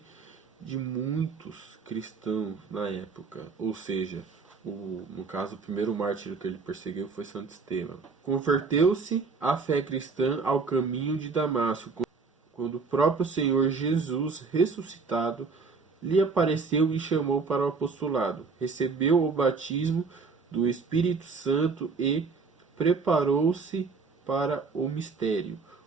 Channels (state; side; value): quieter; left; 4.7 dB